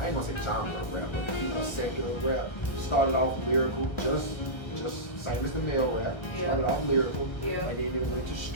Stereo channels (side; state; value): right; late; 1.3 ms